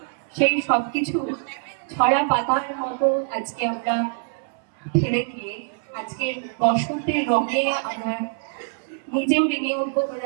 সেই সবকিছু ছড়া পাতার মতো আজকে আমরা ফেলে দিয়ে আজকে বসন্তের রঙে আমরা নিজেও রেঙে উঠবো।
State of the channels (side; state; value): left; silent; 62 dB below the other